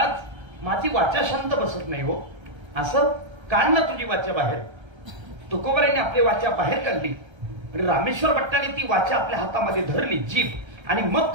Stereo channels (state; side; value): late; left; 1.3 ms